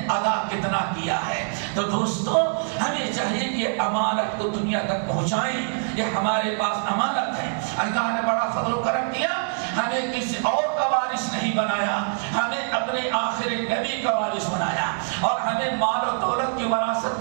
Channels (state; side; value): silent; left; digital silence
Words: ادا کتنا کیا ہے۔ تو دوستو ہمیں چاہیے کہ امانت کو دنیا تک پہنچائیں، یہ ہمارے پاس امانت ہے۔ اللہ نے بڑا فضل و کرم کیا، ہمیں کسی اور کا وارث نہیں بنایا، ہمیں اپنے آخر نبی کا وارث بنایا، اور ہمیں مال و دولت کی وراثت